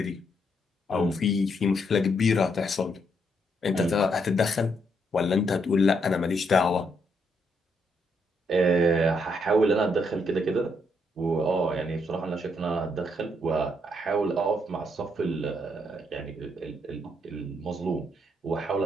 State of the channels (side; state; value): both; normal; correlation 0.75